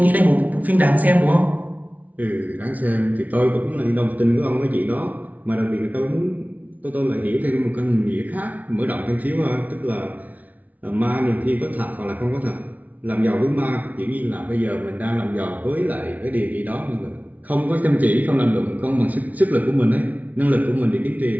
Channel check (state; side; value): late; left; 0.073 ms